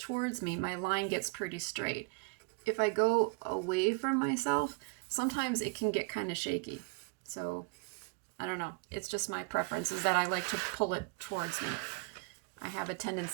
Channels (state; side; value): quieter; left; 30.3 dB